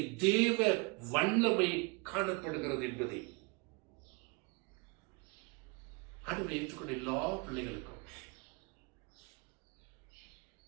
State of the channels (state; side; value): quieter; left; 30.2 dB